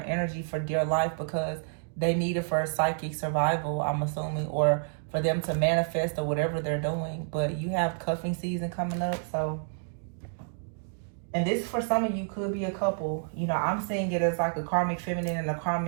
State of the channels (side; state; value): left; silent; digital silence